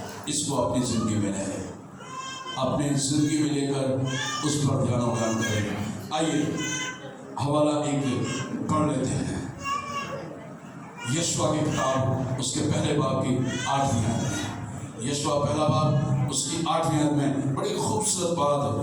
اس کو اپنی زندگی میں لیں, اپنی زندگی میں لے کر اس پر دھیان و بیان کریں. آئیے حوالہ ایک پڑھ لیتے ہیں, یشوع کی کتاب اس کے پہلے باب کی 8ویں آیت میں. یشوع پہلا باب اس کی 8ویں آیت میں بڑی خوبصورت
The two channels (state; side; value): identical; both; correlation 1.00